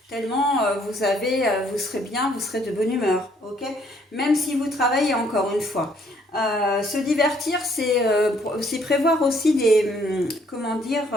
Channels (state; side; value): normal; both; correlation 0.65